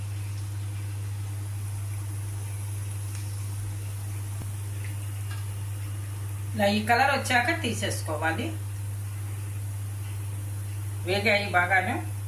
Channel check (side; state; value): both; identical; correlation 1.00